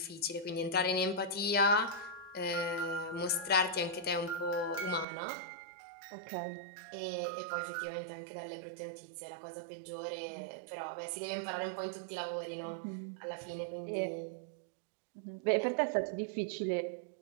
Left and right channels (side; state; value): left; drops out; at 5.1 s